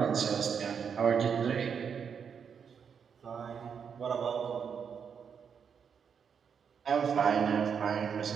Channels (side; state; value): left; quieter; 6.9 dB